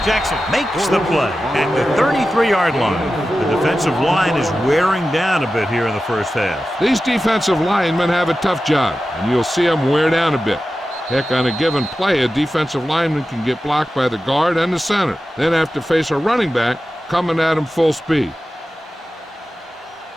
Jackson makes the play at the 33-yard line. The defensive line is wearing down a bit here in the first half. These defensive linemen have a tough job, and you'll see them wear down a bit. Heck, on a given play, a defensive lineman can get blocked by the guard and the center, then have to face a running back coming at him full speed.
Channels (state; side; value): normal; both; correlation 0.93